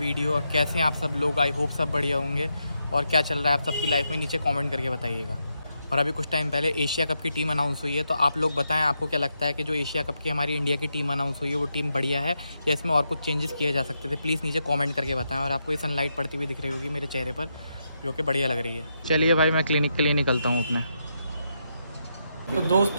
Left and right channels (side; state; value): both; inverted; correlation -0.83